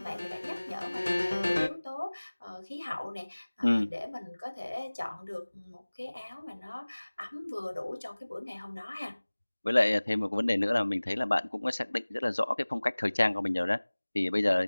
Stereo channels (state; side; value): inverted; both; correlation -1.00